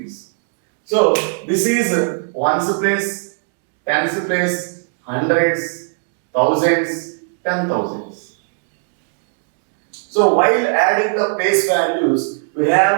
So this is ones place, tens place, hundreds, thousands, 10,000s. So while adding the place values,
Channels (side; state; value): left; silent; 67 dB below the other